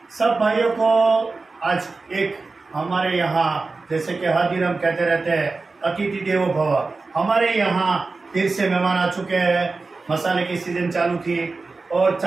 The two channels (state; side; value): quieter; left; 3.9 dB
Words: सब भाइयों को। आज एक हमारे यहाँ जैसे कि हर दिन हम कहते रहते हैं अतिथि देवो भव, हमारे यहाँ फिर से मेहमान आ चुके हैं। मसाले की सीजन चालू थी और